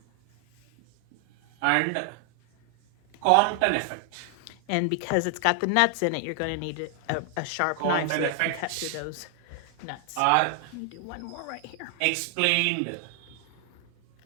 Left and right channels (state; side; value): different; both; correlation 0.00